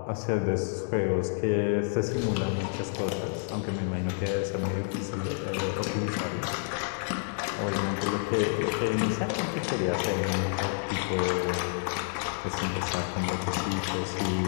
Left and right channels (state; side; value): silent; right; 58 dB below the other